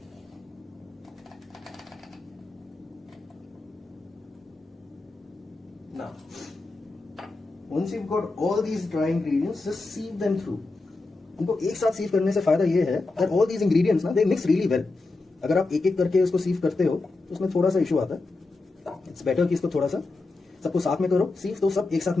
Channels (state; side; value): quieter; right; 3.4 dB